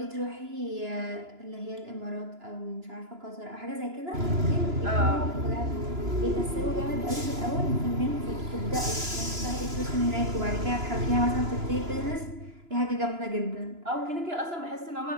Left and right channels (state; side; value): late; left; 2.9 ms